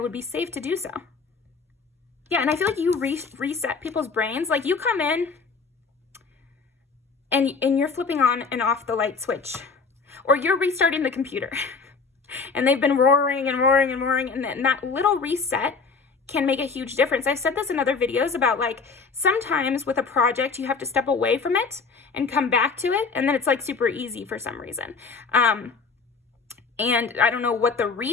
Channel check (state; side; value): quieter; right; 4.9 dB